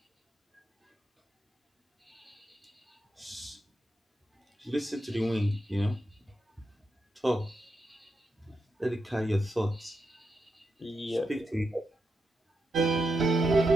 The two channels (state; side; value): normal; both; correlation 0.86